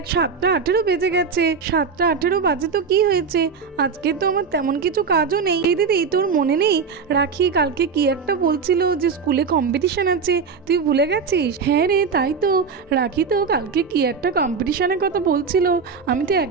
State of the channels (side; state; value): left; quieter; 5.5 dB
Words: 7:18 বেজে গেছে। 7:18 বাজে তো কি হয়েছে? আজকে তো আমার তেমন কিছু কাজও নেই। এই দিদি তোর মনে নেই রাখি কালকে কি একটা বলছিল যে স্কুলে কম্পিটিশন আছে, তুই ভুলে গেছিস? হ্যাঁ রে তাই তো, রাখি তো কালকে কি একটা কম্পিটিশনের কথা বলছিল, আমি তো